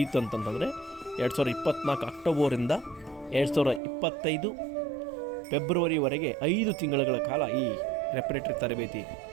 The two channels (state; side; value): drops out; left; at 3.8 s